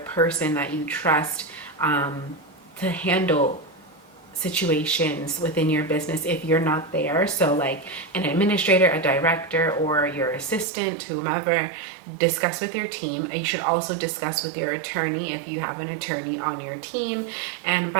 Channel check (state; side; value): drops out; left; at 10.7 s